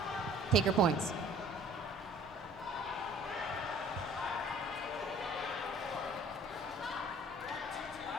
take her points.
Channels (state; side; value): normal; both; correlation 0.52